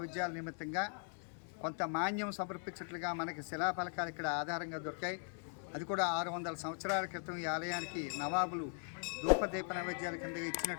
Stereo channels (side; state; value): right; silent; 51 dB below the other